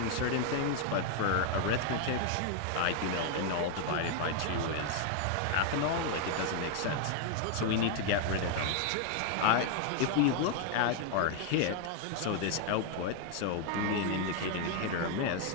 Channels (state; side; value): different; both; correlation 0.01